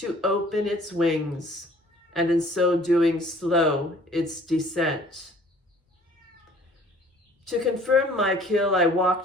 open its wings, and in so doing slow its descent. To confirm my kill, I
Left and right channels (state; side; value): normal; both; correlation 0.53